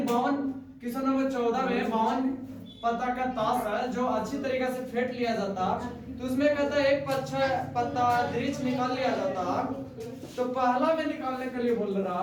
52 क्वेश्चन नंबर 14 में 52 पत्ता का ताश है जो अच्छी तरीके से फेंट लिया जाता, तो उसमें कहता है एक पत्ता दृढ़ निकाल लिया जाता। तो पहला में निकालने के लिए बोल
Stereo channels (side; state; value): both; identical; correlation 1.00